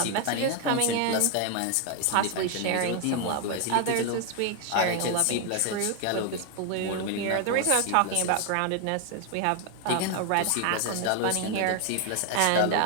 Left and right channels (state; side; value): different; both; correlation 0.01